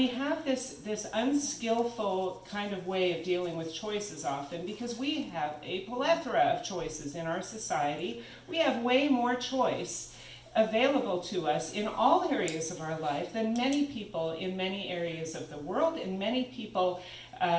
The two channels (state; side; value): identical; both; correlation 1.00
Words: have this unskillful kind of way of dealing with choices often, because we have a plethora of choices in our society. We have way more choice available to us in all areas of our life than many people in many areas of the world, and many people